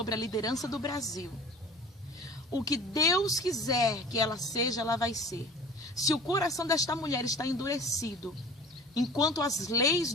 a liderança do Brasil, o que Deus quiser que ela seja, ela vai ser. Se o coração desta mulher está endurecido, enquanto as leis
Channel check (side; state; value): both; normal; correlation 0.42